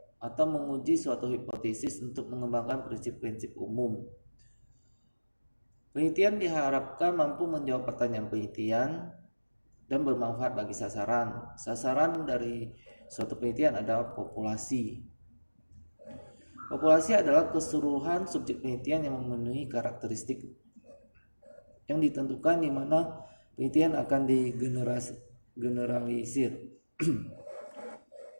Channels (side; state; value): both; inverted; correlation -1.00